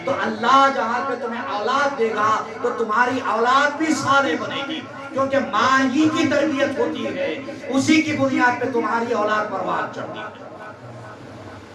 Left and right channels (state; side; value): identical; both; correlation 1.00